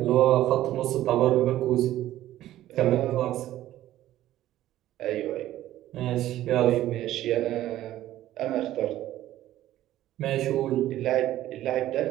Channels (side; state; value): left; quieter; 13.9 dB